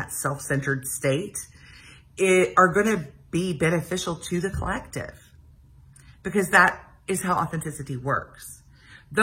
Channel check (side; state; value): both; identical; correlation 1.00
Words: self-centered state are going to be beneficial to the collective, because that is how authenticity works.